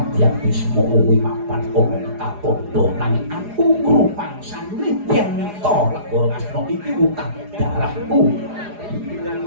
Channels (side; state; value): left; late; 4.8 ms